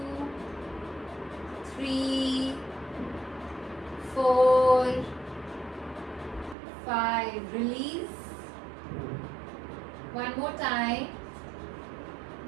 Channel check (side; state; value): left; drops out; at 6.6 s